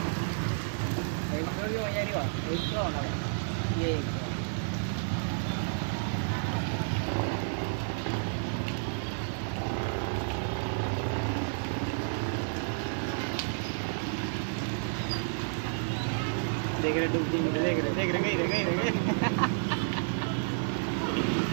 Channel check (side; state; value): left; silent; 57 dB below the other